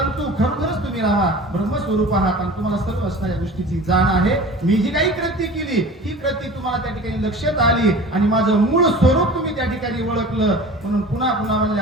खरोखरच तुम्ही रामा ब्रह्मस्वरूप आहात आणि तुम्हाला सर्व असणाऱ्या गोष्टीची जाण आहे. मी जी काही कृती केली ही कृती तुम्हाला त्या ठिकाणी लक्षात आली आणि माझं मूळ स्वरूप तुम्ही त्या ठिकाणी ओळखलं. म्हणून पुन्हा पुन्हा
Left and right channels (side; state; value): both; normal; correlation 0.39